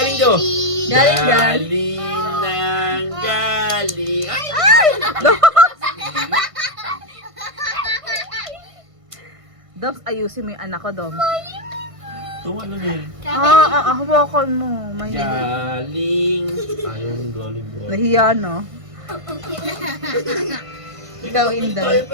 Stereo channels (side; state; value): left; late; 1.5 ms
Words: daw! baby. Galing. Galing ng galing! Ay! Doms, ayusin mo yung anak ko, Doms. Tuwa na eh. Hawakan mo. Mahilig. Galing! Ayun, galing bro. Nahiya, no? Ikaw, Inday.